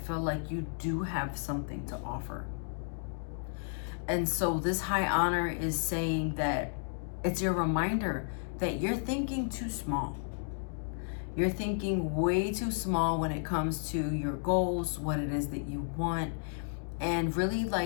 like you do have something to offer. And so this high honor is saying that it's your reminder that you're thinking too small. You're thinking way too small when it comes to your goals, what it is that you want, and really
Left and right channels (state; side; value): silent; right; digital silence